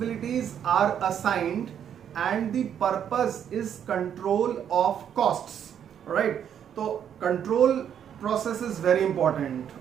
are assigned and the purpose is control of costs, right? So control process is very important.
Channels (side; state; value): left; quieter; 8.9 dB